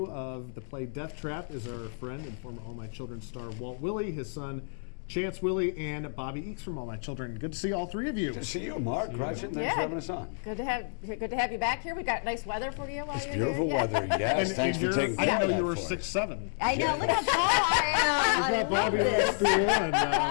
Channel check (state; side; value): silent; right; digital silence